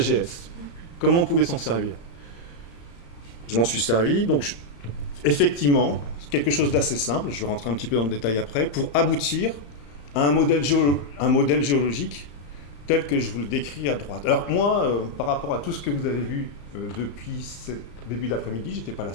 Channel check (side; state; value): right; late; 35 ms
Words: Comment on pouvait s'en servir? Je m'en suis servi, donc effectivement, quelque chose d'assez simple, je vais rentrer un petit peu dans le détail après, pour aboutir à un modèle géologique tel que je vous le décris à droite. Alors moi, par rapport à tout ce que vous avez vu depuis ce début d'après-midi, j'étais pas là